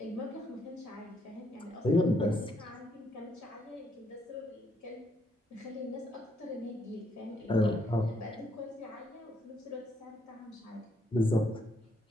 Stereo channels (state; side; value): normal; both; correlation 0.73